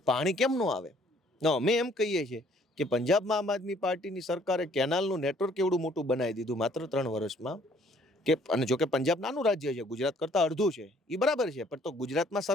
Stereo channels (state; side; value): normal; both; correlation 0.61